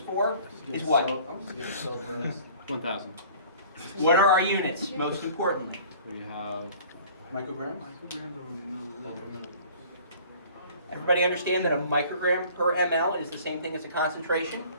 is what? 1,000. What are our units? Most important. We have Micrograms? Everybody understand that a microgram per ml is the same thing as a concentration?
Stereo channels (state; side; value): inverted; both; correlation -0.49